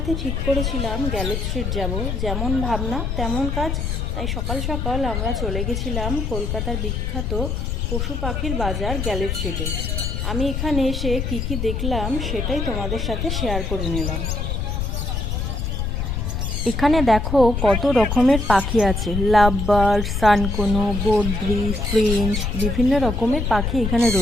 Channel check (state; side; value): noise; left; rumble, 1 dB below the sound